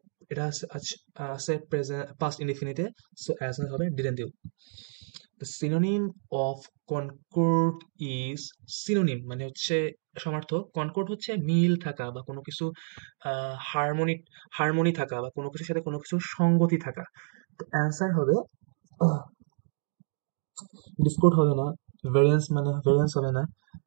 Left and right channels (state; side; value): silent; left; digital silence